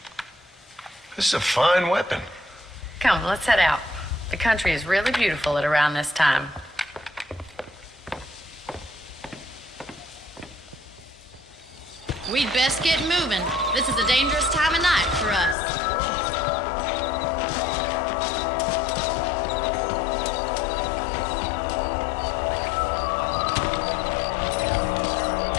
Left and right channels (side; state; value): right; drops out; at 15.6 s